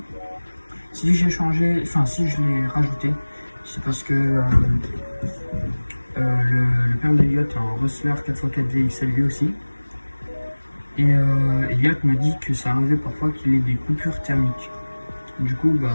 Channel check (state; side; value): inverted; both; correlation -1.00